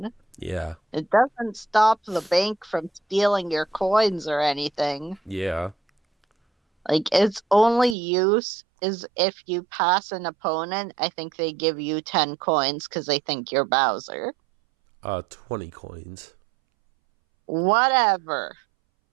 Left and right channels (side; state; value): left; drops out; at 8.0 s